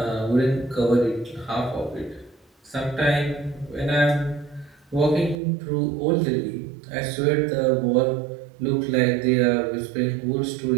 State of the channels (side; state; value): left; drops out; at 5.4 s